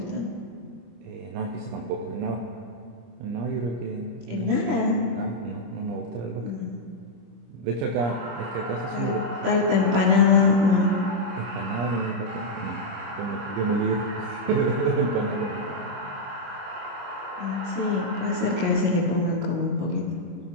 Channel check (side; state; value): left; late; 25 ms